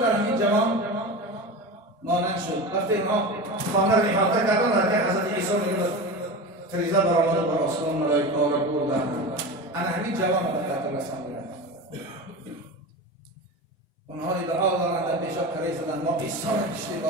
همین جوان مانند شد. وقتی اینها خانه را احاطه کردن در حضرت عیسی میگه فریضه برآمد بر آسمان ملائکه را بردن. انا همین جوان را به قتل رساندند. اونها ادعا دارند در پیشاب کاری زدن ما عیسی را کشتیم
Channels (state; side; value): normal; both; correlation 0.28